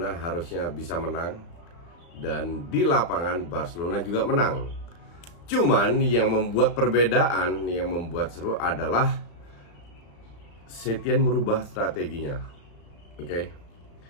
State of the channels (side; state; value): right; late; 35 ms